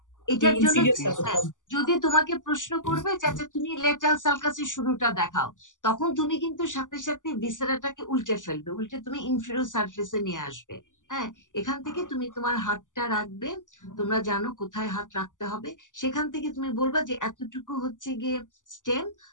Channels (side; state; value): right; late; 0.87 ms